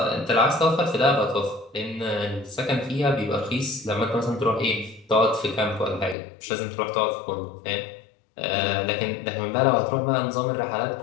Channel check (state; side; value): drops out; right; at 6.2 s